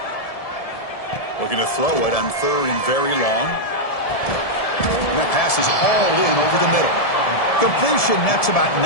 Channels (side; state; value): right; late; 1.7 ms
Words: Looking to throw it on 3rd and very long. And that pass is hauled in over the middle. Completion nets about